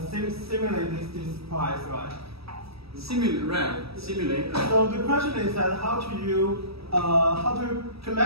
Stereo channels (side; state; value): left; late; 0.77 ms